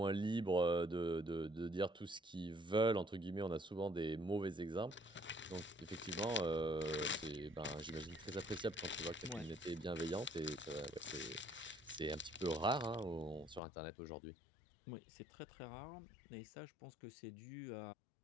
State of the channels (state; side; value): drops out; right; at 13.6 s